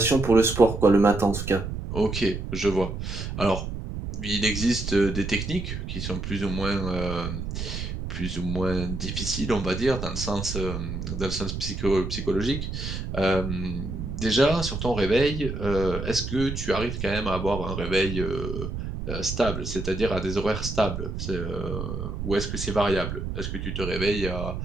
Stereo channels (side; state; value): right; noise; rumble, 5 dB below the sound